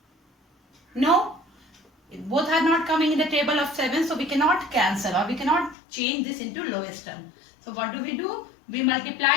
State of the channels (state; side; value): drops out; right; at 5.8 s